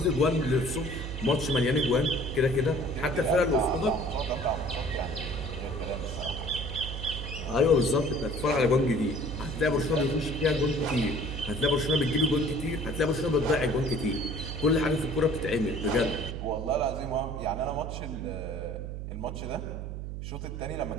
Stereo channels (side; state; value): right; noise; hum, 6 dB below the sound